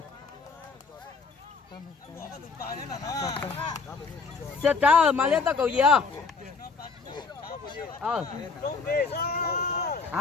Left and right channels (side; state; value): right; quieter; 4.5 dB